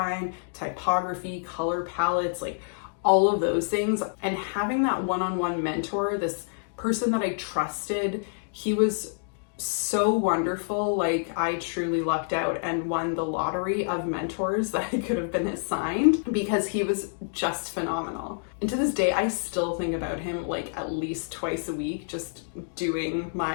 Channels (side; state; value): right; silent; digital silence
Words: typography, color palettes, like all of those things. And having that one-on-one mentor, this person that I trusted, he was so wonderful. Like, I truly lucked out and won the lottery of mentors that I could have been assigned, because he was just phenomenal. And to this day, I still think about him like at least twice a week, just doing